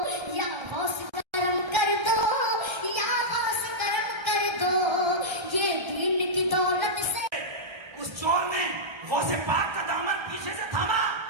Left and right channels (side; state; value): left; late; 1.3 ms